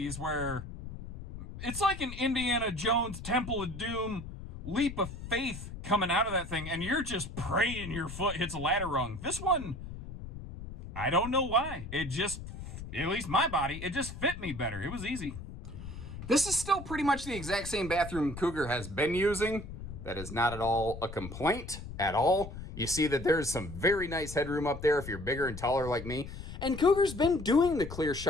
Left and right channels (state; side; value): noise; left; rumble, 10 dB below the sound